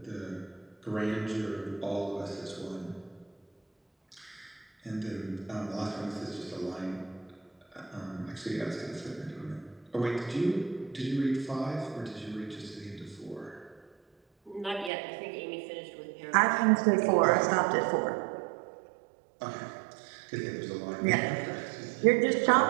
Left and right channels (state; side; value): drops out; left; at 14.9 s